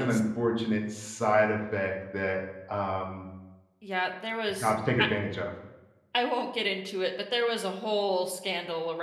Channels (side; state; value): both; identical; correlation 1.00